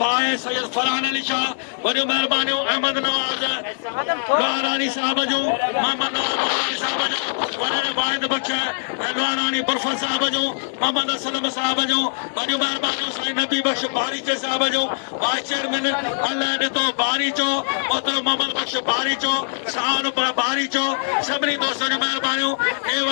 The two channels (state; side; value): silent; right; 64 dB below the other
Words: भाई सैयद फरहान अली शाह वॾियूं महिरबानियूं अहमद नवाज लोहारानी साहब जो मोहम्मद नवाज लोहारानी साहब जो वॾे वाहिद बख़्श लोहारानी बरफर साहब जो मोहम्मद असलम साहब जो वॾियूं महिरबानियूं साईं नबी बख़्श बारीचे साहब जो वाइस चेयरमैन अल्लाह ॾिठो बारीचो मोहतरम मोहम्मद बख़्श बारीचो शान बारीचो सभिनी दोस्तनि जूं महिरबानियूं